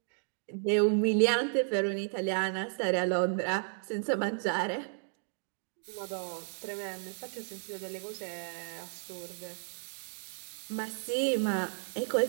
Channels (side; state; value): left; silent; digital silence